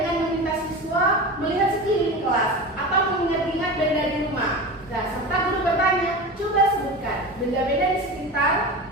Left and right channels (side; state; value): both; normal; correlation 0.28